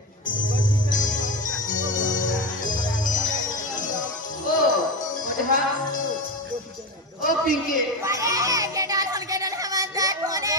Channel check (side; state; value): both; normal; correlation 0.20